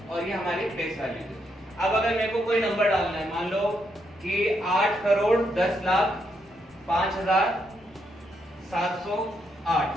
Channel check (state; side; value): normal; both; correlation 0.78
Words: और ये हमारी प्लेस वैल्यू है। अब अगर मेरे को कोई नंबर डालना है, मान लो कि 8 करोड़ 10 लाख 5,708,